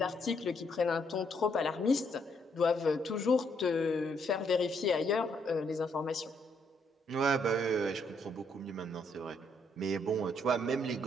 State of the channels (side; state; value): both; normal; correlation 0.72